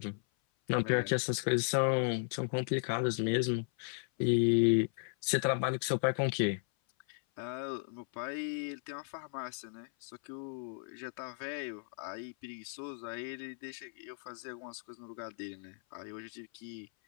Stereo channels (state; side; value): silent; right; 54 dB below the other